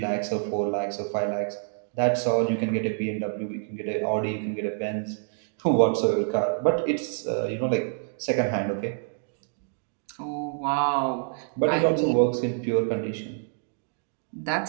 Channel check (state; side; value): silent; left; digital silence